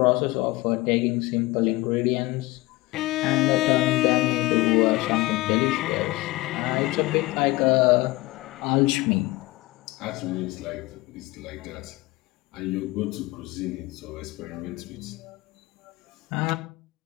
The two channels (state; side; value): quieter; right; 20.4 dB